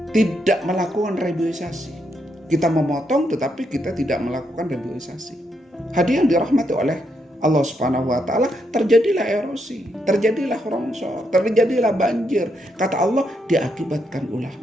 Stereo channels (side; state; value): both; normal; correlation 0.79